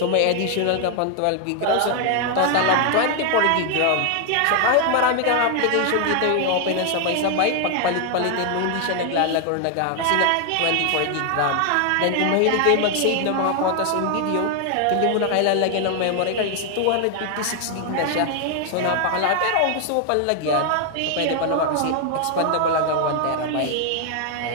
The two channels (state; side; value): different; both; correlation 0.00